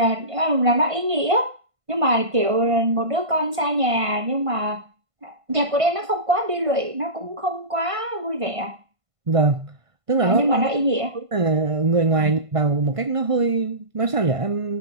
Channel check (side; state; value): left; late; 1.5 ms